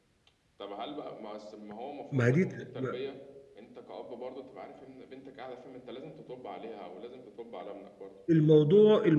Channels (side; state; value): both; identical; correlation 1.00